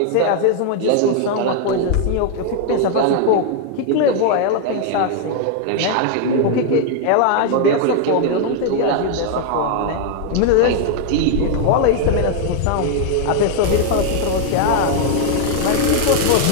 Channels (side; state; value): both; different; correlation 0.00